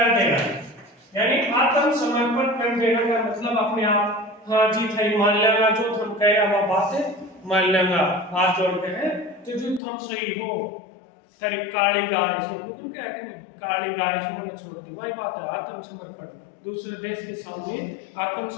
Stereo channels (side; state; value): right; drops out; at 9.8 s